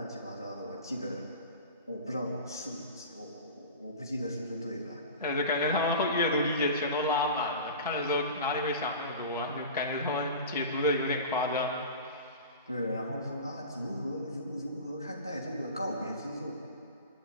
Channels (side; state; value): both; inverted; correlation -0.34